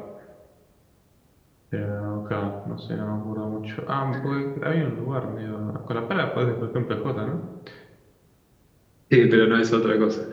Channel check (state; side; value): identical; both; correlation 1.00